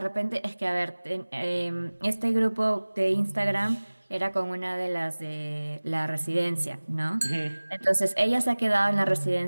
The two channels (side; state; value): both; inverted; correlation -1.00